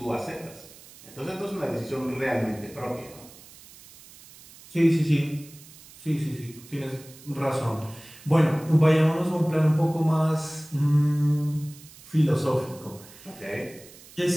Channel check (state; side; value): noise; right; hiss, 21 dB below the sound